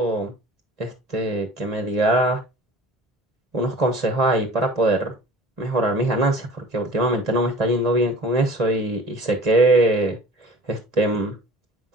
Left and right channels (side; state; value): both; normal; correlation 0.44